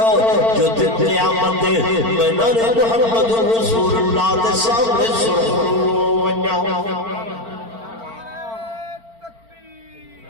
جو دن قیامت دے میں نے محمد رسول اللہ دے سامنے سرخرو ونجاؤ۔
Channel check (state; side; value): late; left; 4.4 ms